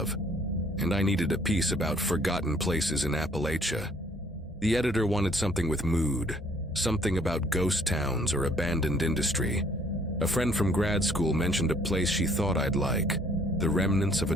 and I needed a piece about forgotten places in Appalachia. The editor wanted something with mood, something about ghost towns or abandoned industry. A friend from grad school mentioned a place she thought I'd like, the remnants of a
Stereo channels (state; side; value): normal; both; correlation 0.61